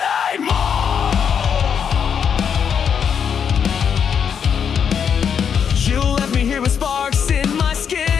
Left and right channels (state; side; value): quieter; right; 7.4 dB